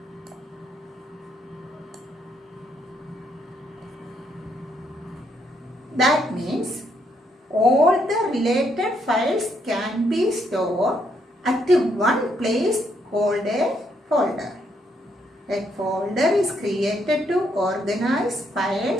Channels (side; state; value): both; normal; correlation 0.74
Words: That means all the related files can be stored at one place called a folder. A folder is created to organize